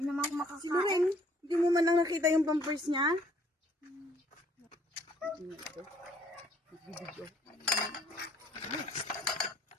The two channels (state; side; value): normal; both; correlation 0.62